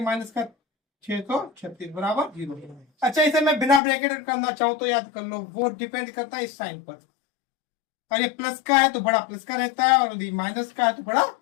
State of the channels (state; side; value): drops out; right; at 3.8 s